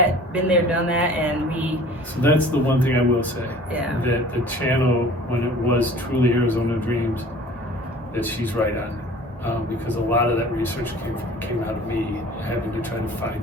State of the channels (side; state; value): both; normal; correlation 0.46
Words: been there, done that, and we. So that's the one thing I will say. Yeah. That the channel, when it was truly Arizona Dreams, that she's right on, because a lot of that research came out of me having to try to find